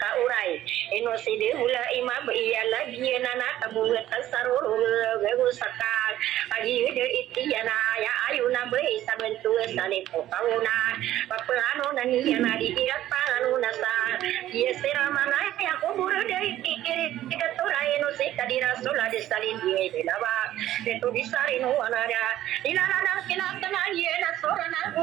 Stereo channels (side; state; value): left; quieter; 13.4 dB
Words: ino si de hula ima ba iya lagi na nakabuhat ang saruro gago sakal agi de iti na ya ayu na ba sa bentua sa nito kauna papaano na niya na di ila paano na sa iya sira mana ya ko buro de iti ikaturay ino si kadira sula de salin di lawa ito bisari no anara ilala na kinakana iya na sora na